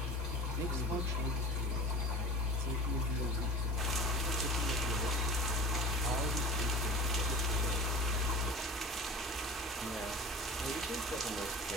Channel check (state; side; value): normal; both; correlation 0.37